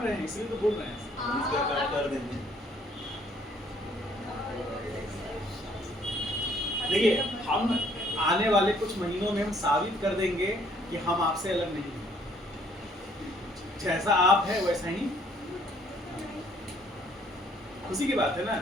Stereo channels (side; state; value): both; normal; correlation 0.63